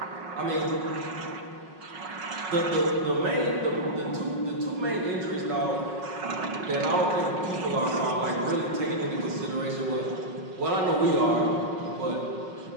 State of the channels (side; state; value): left; late; 5.5 ms